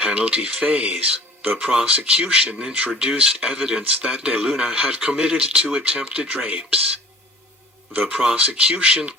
phase, the prosecution introduced evidence that De Luna had committed 2 attempted rapes. The prosecution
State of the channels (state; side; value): normal; both; correlation 0.46